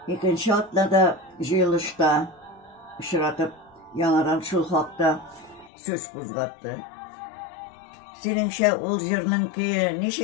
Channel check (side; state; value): right; drops out; at 5.7 s